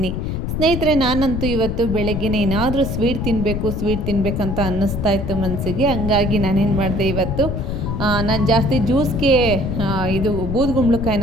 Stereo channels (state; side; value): noise; left; rumble, 3 dB below the sound